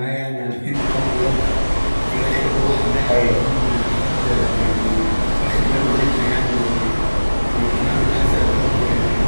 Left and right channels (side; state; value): both; inverted; correlation -1.00